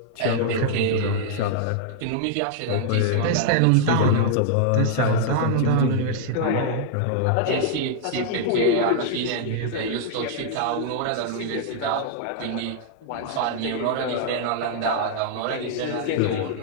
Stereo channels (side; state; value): both; different; correlation -0.01